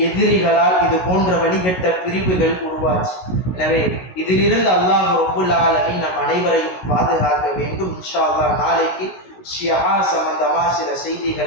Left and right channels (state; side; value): late; right; 16 ms